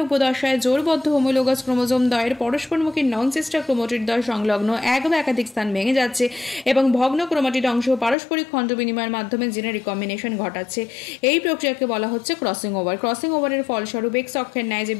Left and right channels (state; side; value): drops out; right; at 8.2 s